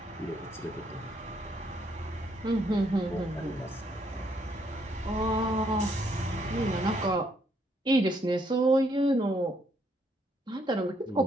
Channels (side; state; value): both; normal; correlation 0.72